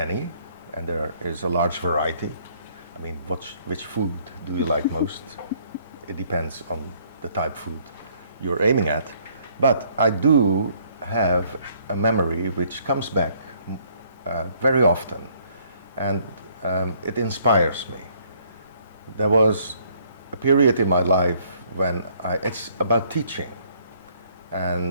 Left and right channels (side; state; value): both; inverted; correlation -0.64